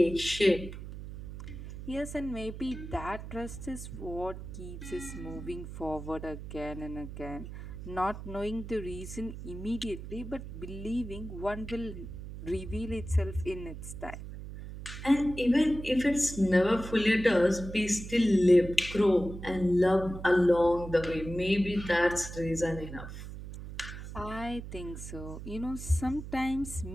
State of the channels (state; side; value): noise; right; hum, 10 dB below the sound